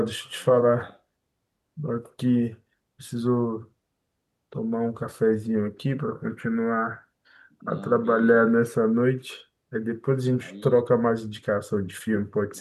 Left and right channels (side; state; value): both; identical; correlation 1.00